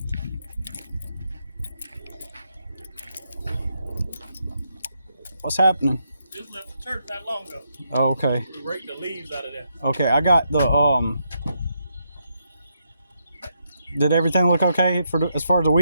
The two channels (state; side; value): inverted; both; correlation -0.79